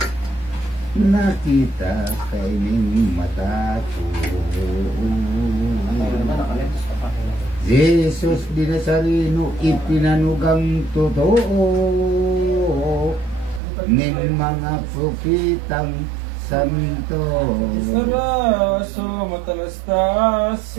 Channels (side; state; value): left; drops out; at 13.6 s